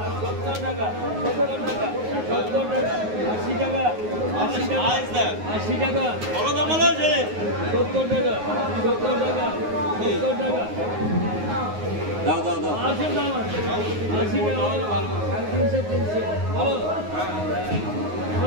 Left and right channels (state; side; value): late; left; 9.5 ms